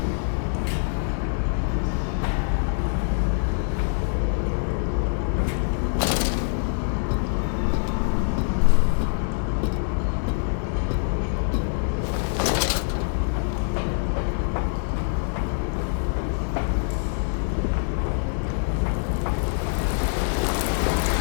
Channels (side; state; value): right; silent; digital silence